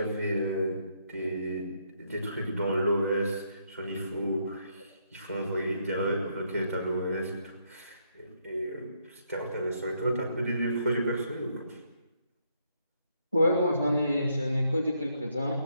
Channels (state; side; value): inverted; both; correlation -0.75